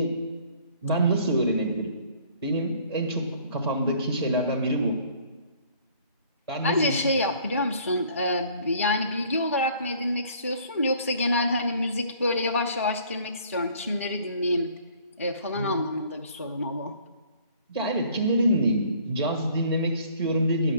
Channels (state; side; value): inverted; both; correlation -0.56